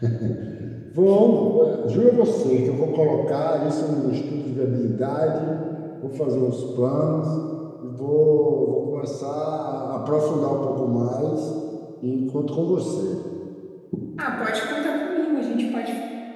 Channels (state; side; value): identical; both; correlation 1.00